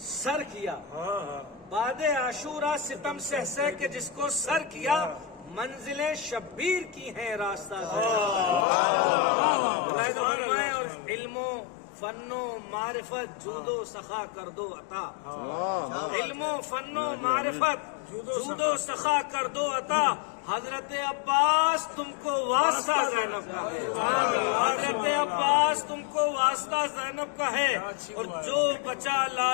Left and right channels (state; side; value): drops out; right; at 8.7 s